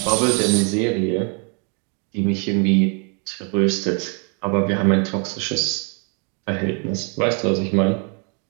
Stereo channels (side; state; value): left; quieter; 37.4 dB